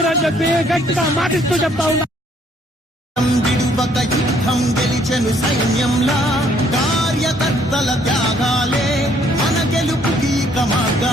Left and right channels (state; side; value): normal; both; correlation 0.64